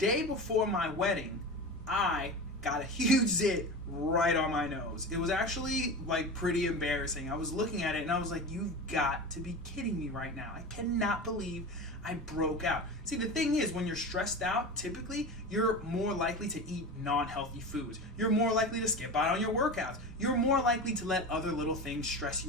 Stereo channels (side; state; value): both; normal; correlation 0.28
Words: before my wedding, I got a huge zit right on my nose. It was actually like pretty embarrassing. I was looking at it and I was like, you've got to be kidding me right now. I cannot believe I broke out. See, the thing is, when you're stressed out, typically you're more likely to eat non-healthy foods. You're more likely to skip out on your workouts. You're more likely to let other little things stress